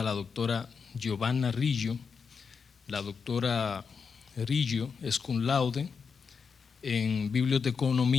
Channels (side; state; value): right; quieter; 5.7 dB